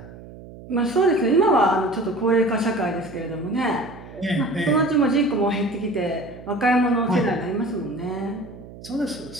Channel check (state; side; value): noise; right; hum, 17 dB below the sound